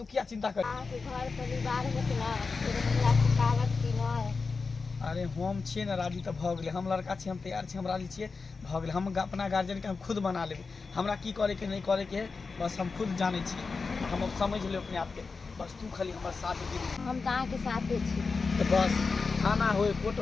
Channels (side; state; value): right; quieter; 4.5 dB